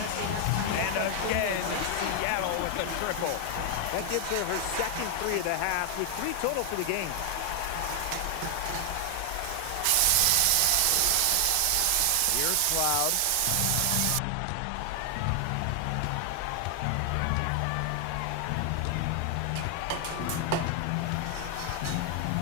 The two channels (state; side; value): different; both; correlation 0.00